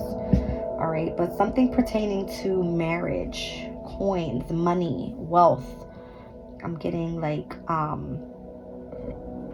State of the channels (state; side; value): identical; both; correlation 1.00